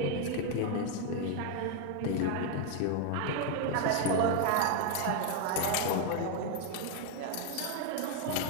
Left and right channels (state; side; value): different; both; correlation 0.01